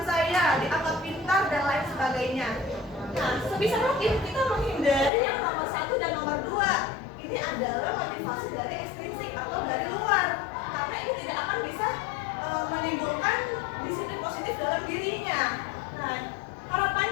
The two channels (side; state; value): right; drops out; at 5.1 s